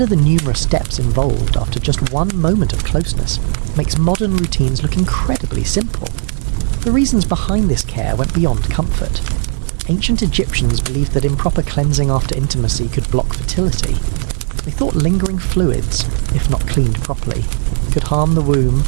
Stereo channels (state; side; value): silent; left; digital silence